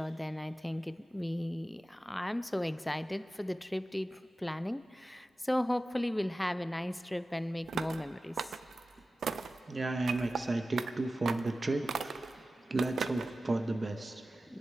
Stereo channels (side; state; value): both; normal; correlation 0.95